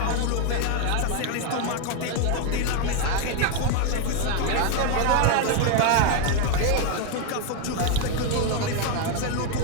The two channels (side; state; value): both; different; correlation 0.01